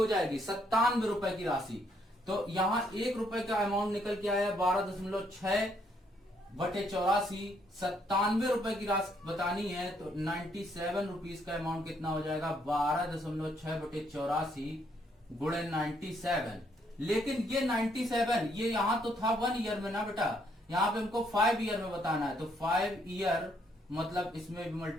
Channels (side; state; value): both; normal; correlation 0.71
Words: जाएगी, 97 रुपए की राशि। तो यहां 1 रुपए का अमाउंट निकल के आया 12.6 बटे 84, 97 रुपए की राशि बतानी है तो 97 रुपीज का अमाउंट कितना हो जाएगा, 12.6 बटे 84 गुणे 97। लेकिन ये 97 ये यहां तो था 1 ईयर में ना बेटा, यहां पे हमको 5 ईयर में बताना है। तो 5 ईयर मतलब इसमें भी